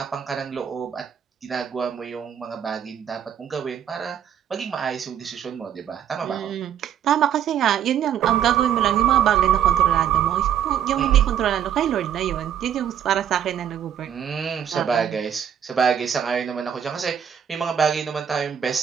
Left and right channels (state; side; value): quieter; left; 9.2 dB